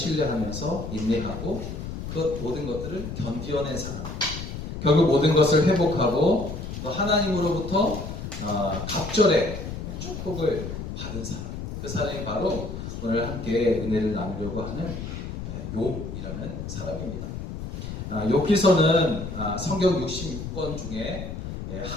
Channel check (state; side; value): noise; left; rumble, 7 dB below the sound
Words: 인내하고 그 모든 것들을 견디어낸 사람, 결국 모든 것을 회복하고 또 하나님으로부터 갑절의 축복을 받은 사람, 그 사람이 바로 오늘 함께 은혜를 나누려고 하는 욥이라는 사람입니다. 욥기서는 성경 66권 중에